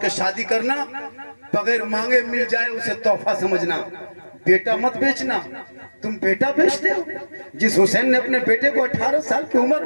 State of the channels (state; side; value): inverted; both; correlation -1.00